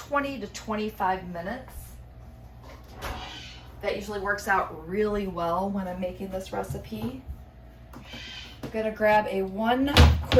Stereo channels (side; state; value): both; identical; correlation 1.00